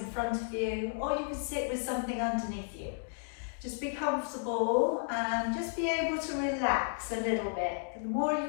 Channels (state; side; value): silent; right; digital silence